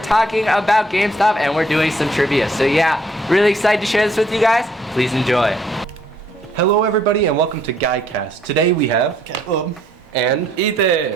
talking about Gamestop, and we're doing some trivia. So yeah, really excited to share this with you guys. Please enjoy. Hello everybody and welcome to Guycast. Today we have Caleb and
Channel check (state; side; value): normal; both; correlation 0.65